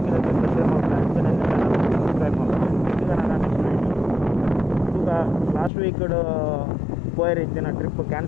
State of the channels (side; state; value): right; drops out; at 5.7 s